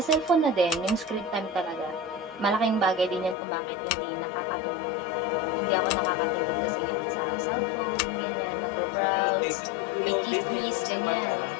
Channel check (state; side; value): drops out; right; at 3.4 s